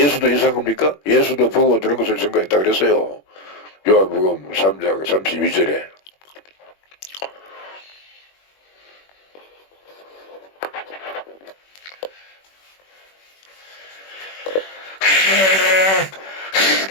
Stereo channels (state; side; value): late; right; 21 ms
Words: 이상합니까? 예수도 보고 들은 것을 증거했다 그랬어요. 요한복음 3장 32절에.